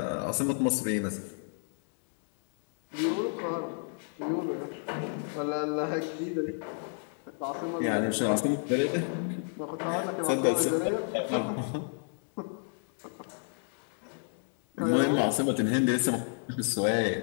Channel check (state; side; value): silent; right; 57 dB below the other